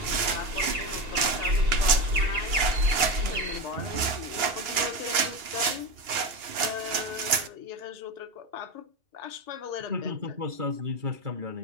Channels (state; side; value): late; left; 2.9 ms